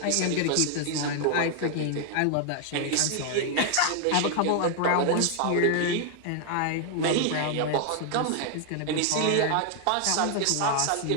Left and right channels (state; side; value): different; both; correlation 0.00